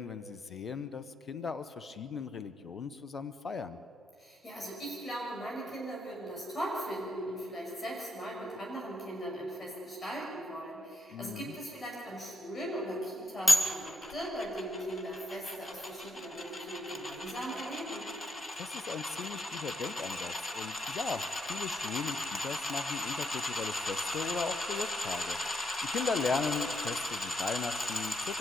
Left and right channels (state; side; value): normal; both; correlation 0.77